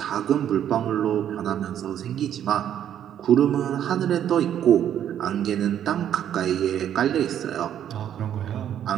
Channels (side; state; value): left; quieter; 10.1 dB